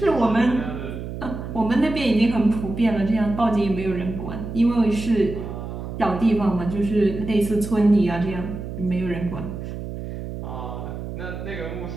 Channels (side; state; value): right; noise; hum, 8 dB below the sound